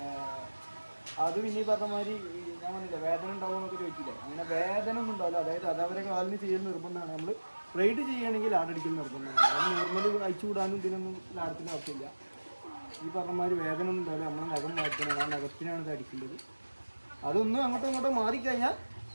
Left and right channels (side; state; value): both; inverted; correlation -1.00